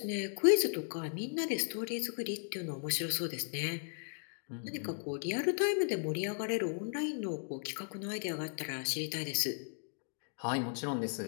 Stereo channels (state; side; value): silent; right; 54 dB below the other